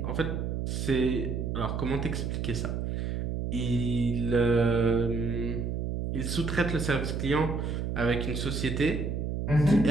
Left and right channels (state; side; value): noise; right; hum, 2 dB below the sound